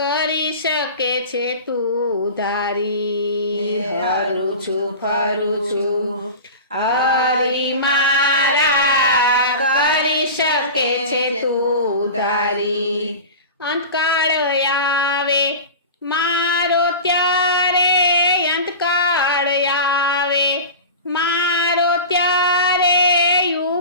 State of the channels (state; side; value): inverted; both; correlation -0.32